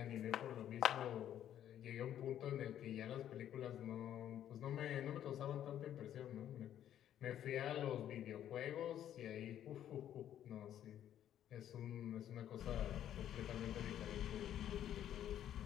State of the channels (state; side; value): quieter; right; 10.8 dB